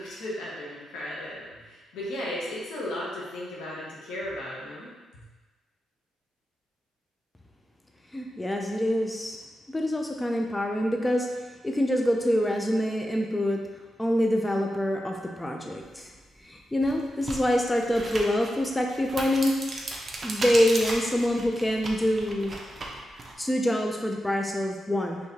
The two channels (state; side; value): normal; both; correlation 0.90